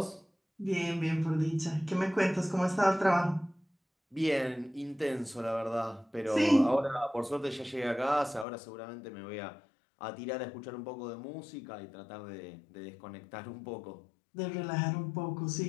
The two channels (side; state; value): right; drops out; at 8.5 s